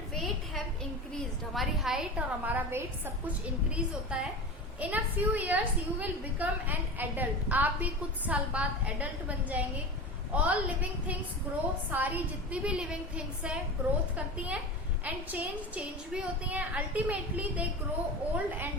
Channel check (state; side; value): normal; both; correlation 0.28